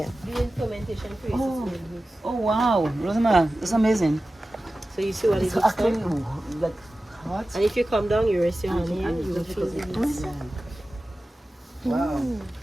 During fermentation process. Oh. Oh wow, Rosamara, that's amazing. So you see what it It's looks actually like? like hot. And if you come down, you rest your hand here, you will feel the heat. Wow.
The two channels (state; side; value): normal; both; correlation 0.95